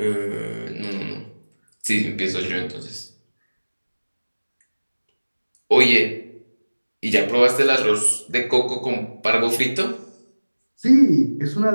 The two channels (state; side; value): inverted; both; correlation -1.00